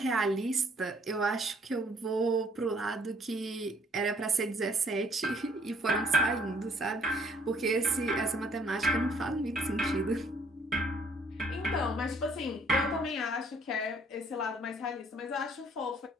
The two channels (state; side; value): normal; both; correlation 0.62